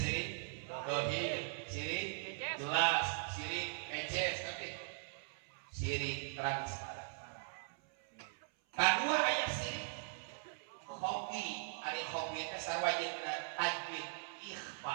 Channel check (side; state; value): left; silent; 51 dB below the other